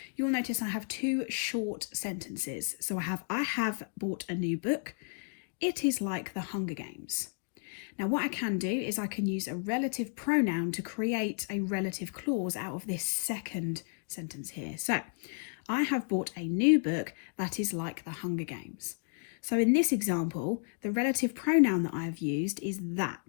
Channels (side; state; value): right; silent; 56 dB below the other